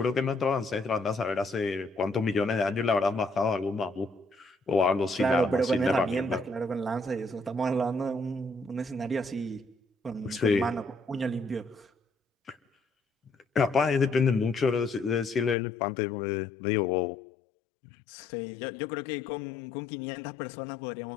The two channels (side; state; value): right; drops out; at 15.6 s